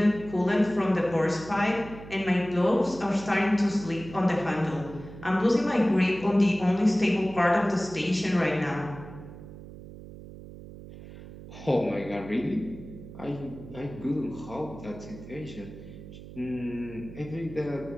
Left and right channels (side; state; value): right; noise; hum, 15 dB below the sound